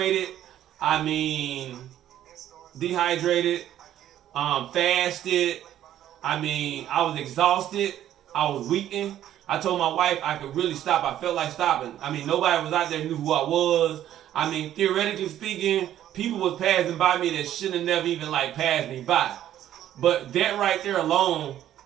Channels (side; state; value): left; quieter; 11.8 dB